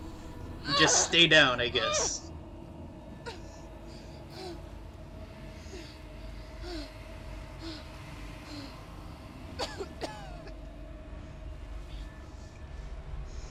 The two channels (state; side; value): identical; both; correlation 1.00